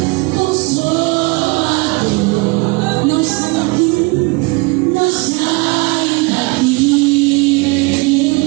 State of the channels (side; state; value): left; quieter; 27.2 dB